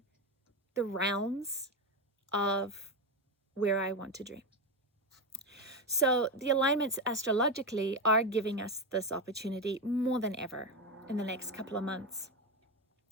the realms of where I want to dream. So the alignments astrologically are giving us this opportunity more than ever in the next couple of months,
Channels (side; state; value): both; normal; correlation 0.13